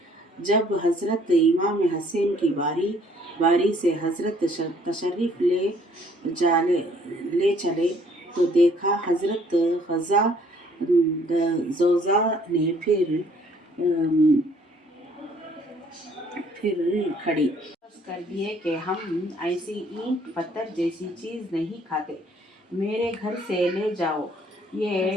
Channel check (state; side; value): normal; both; correlation 0.61